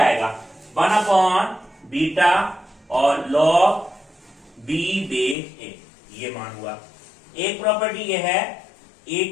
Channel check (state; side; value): drops out; right; at 5.4 s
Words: 1 बीटा और लॉग बी बेस ए, ये मान हुआ। एक प्रॉपर्टी ये है, ए